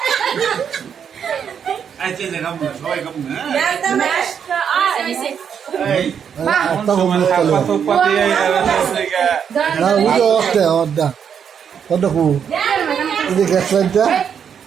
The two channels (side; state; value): left; quieter; 7.7 dB